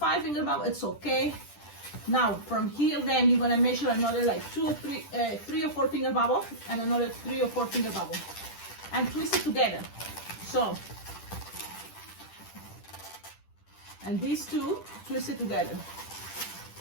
finger bubble, it's okay. Now, from here, then you're gonna measure another like 3 or 4 finger bubble, and another 3 or 4 finger bubble, and twist it together. So, and these two, twist it together.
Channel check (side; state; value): right; late; 10 ms